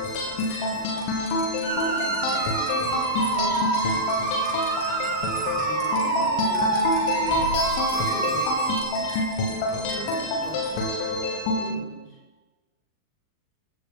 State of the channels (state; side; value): late; right; 39 ms